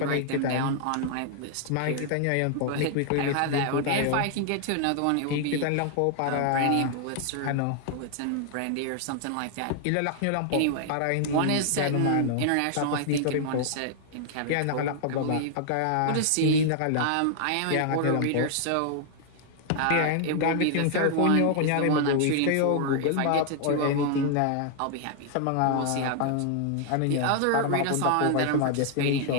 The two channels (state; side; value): different; both; correlation 0.00